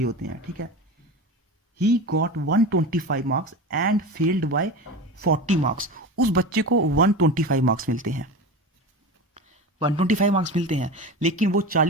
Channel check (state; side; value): normal; both; correlation 0.28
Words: होते हैं। ठीक है, he got 125 marks and failed by 40 marks. उस बच्चे को 125 मार्क्स मिलते हैं, 125 मार्क्स मिलते हैं, लेकिन वो